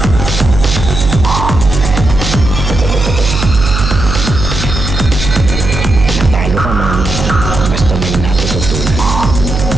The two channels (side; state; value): right; noise; hum, 4 dB below the sound